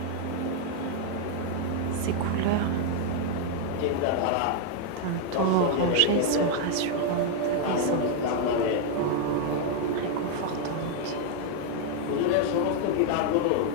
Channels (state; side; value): different; both; correlation 0.00